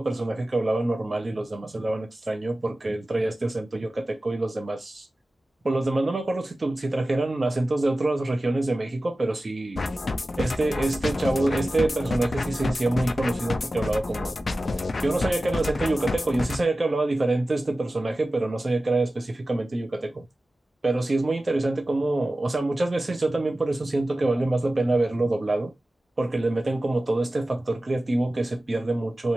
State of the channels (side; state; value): both; normal; correlation 0.96